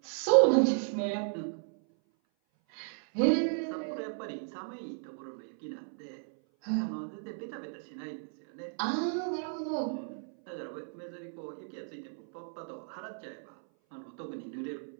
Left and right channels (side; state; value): left; silent; 55 dB below the other